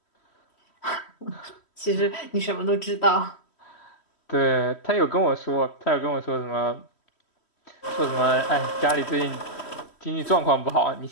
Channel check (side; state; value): right; late; 3.1 ms